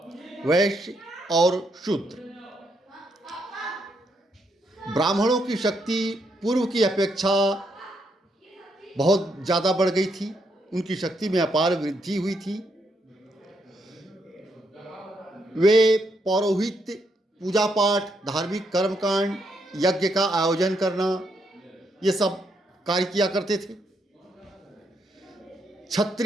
वैश्य और शूद्र। ब्राह्मणों की शक्ति पूर्व की अपेक्षा बहुत ज़्यादा बढ़ गई थी। उनकी शक्ति में अपार वृद्धि हुई थी। वे पौरोहित्य, पूजा पाठ, धार्मिक कर्मकांड, यज्ञ का आयोजन करना, ये सब कार्य किया करते थे।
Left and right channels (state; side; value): normal; both; correlation 0.77